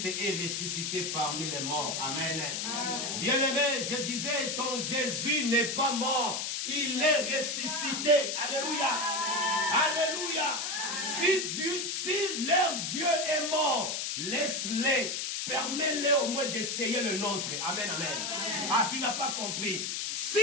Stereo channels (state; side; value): noise; left; hiss, 2 dB below the sound